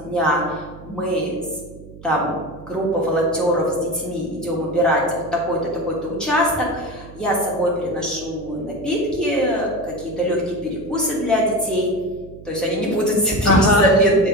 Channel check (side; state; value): right; noise; hum, 18 dB below the sound